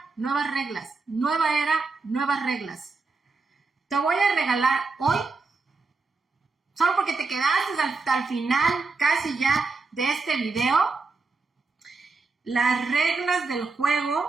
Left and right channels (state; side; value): quieter; left; 4.1 dB